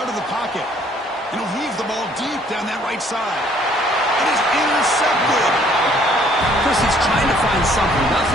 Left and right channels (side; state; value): both; normal; correlation 0.61